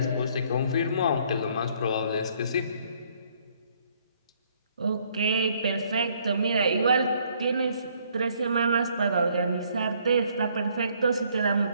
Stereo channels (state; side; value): inverted; both; correlation -0.65